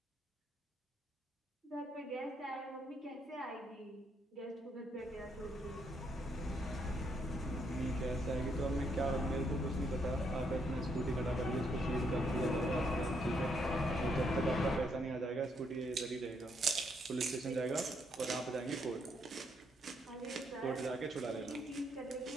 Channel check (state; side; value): normal; both; correlation 0.74